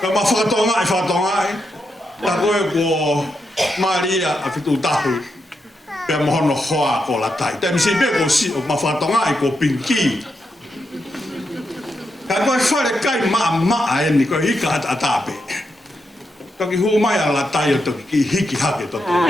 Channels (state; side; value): normal; both; correlation 0.84